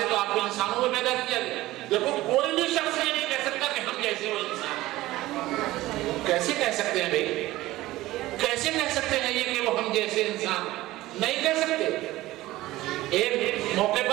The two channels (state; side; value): quieter; left; 17.2 dB